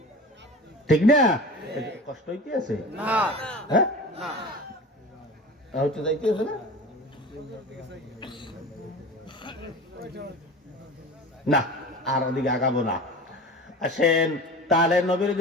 ঠিক না? কষ্ট হইতে আছে? হ্যাঁ, হচ্ছে যাইতে আছে না? না, আর ওদিকে আগাবো না। আসেন, তাহলে নবীর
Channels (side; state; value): both; normal; correlation 0.34